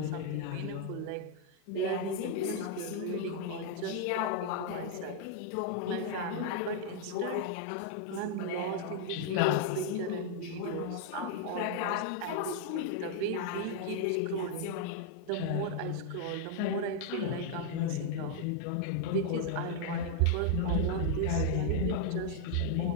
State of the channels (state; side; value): different; both; correlation 0.00